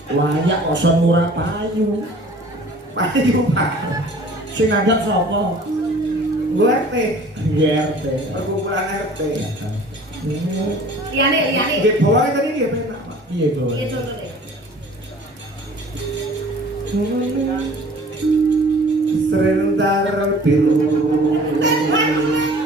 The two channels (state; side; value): normal; both; correlation 0.48